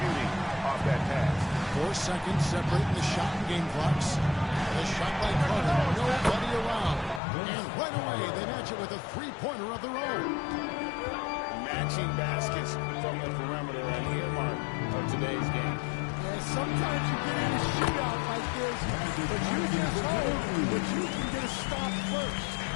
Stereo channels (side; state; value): right; drops out; at 7.2 s